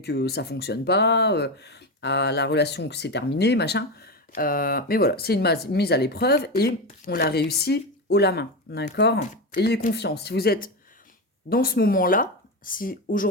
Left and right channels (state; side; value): normal; both; correlation 0.16